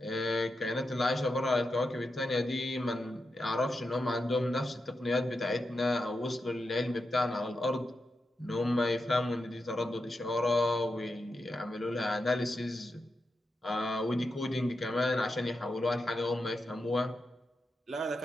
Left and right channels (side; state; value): both; normal; correlation 0.88